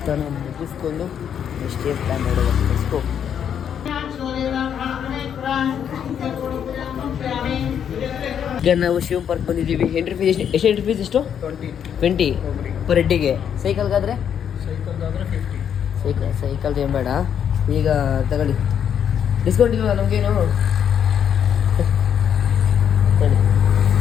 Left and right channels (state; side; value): quieter; right; 8.5 dB